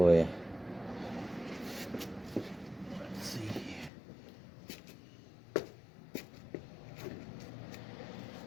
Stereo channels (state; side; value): drops out; right; at 3.9 s